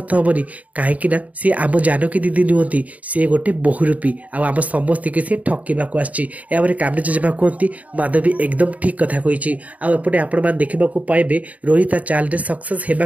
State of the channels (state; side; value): late; left; 0.071 ms